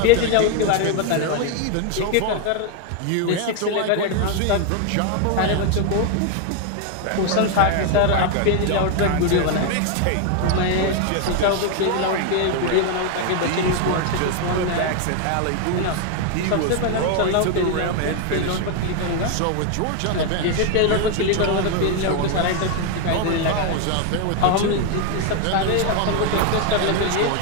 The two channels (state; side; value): different; both; correlation 0.01